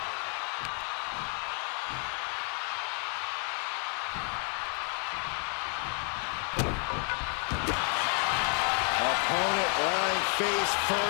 Opponent lying face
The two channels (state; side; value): quieter; right; 39.8 dB